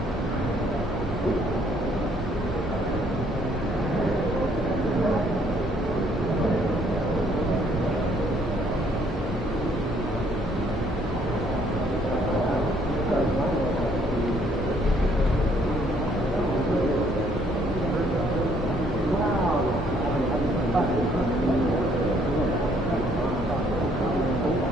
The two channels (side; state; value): both; normal; correlation 0.65